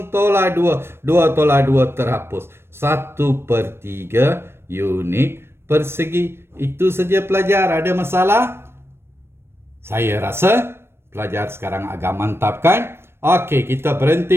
tolak 2. 2 tolak 2 terhapus. 1/3 unit persegi. Itu saja pelajar, ada masalah? Saya rasa pelajar sekarang agak mantap kan? Okey, kita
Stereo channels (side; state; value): left; late; 0.12 ms